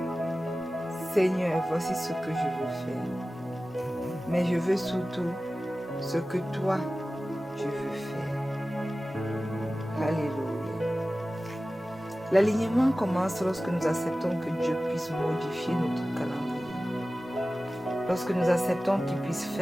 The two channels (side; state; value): both; normal; correlation 0.96